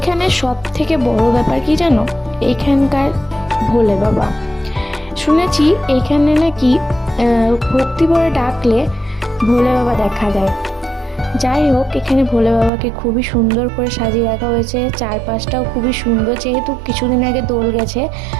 সব থেকে বড় ব্যাপার কি জানো, এখানকার ভোলে বাবা। শুনেছি এখানে নাকি ভক্তি ভরে ডাকলে ভোলে বাবা দেখা দেয়। যাই হোক, এখানে ভোলে বাবাকে খুবই সুন্দর করে সাজিয়ে রাখা হয়েছে, চারপাশটাও খুবই সুন্দর, যেহেতু কিছুদিন আগে দোল গেছে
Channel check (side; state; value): left; drops out; at 12.7 s